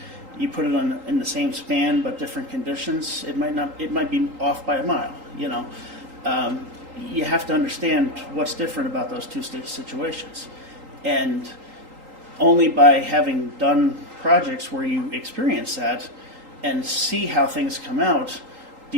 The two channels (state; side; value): late; left; 3.8 ms